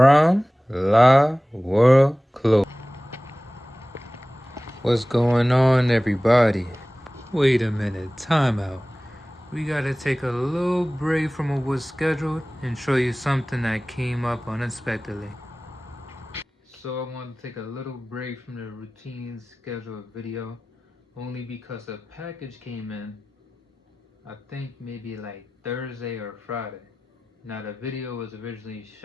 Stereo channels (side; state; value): both; normal; correlation 0.97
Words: La World Clothes. What's going on, everybody? Wait a minute, time out. We gotta take a little break from what was scheduled and show you something that came up unexpectedly. So I want to take a little break from the routine scheduled video only because a package came in, I think maybe like Thursday or Friday. Now the video was originally